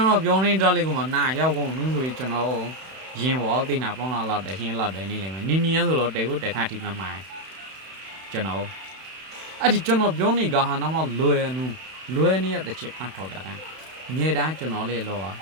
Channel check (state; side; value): late; left; 31 ms